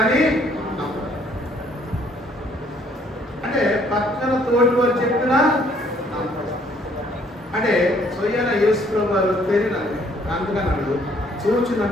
అంటే పక్కన తోటి వారు చెప్పినా అంటే స్వయాన యేసు ప్రభు వారు తెలియదు. అందుకన్నాడు, చూచి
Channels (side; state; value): both; normal; correlation 0.63